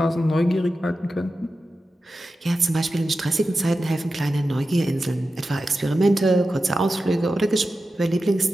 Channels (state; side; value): normal; both; correlation 0.92